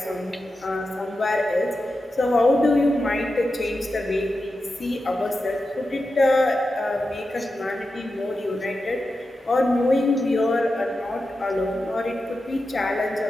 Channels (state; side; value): normal; both; correlation 0.90